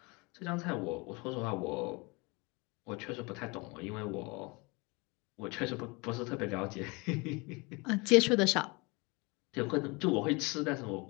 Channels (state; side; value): quieter; right; 27.4 dB